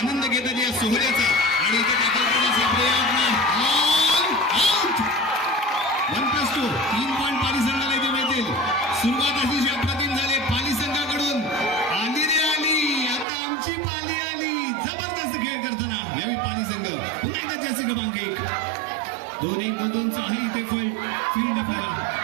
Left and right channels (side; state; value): left; drops out; at 13.2 s